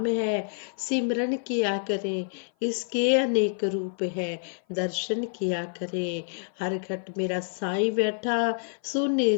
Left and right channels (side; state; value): right; silent; 55 dB below the other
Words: है, सिमरन किया करें, इसके अनेक रूप है, दर्शन किया करें। हर घट मेरा साईं बैठा, सुने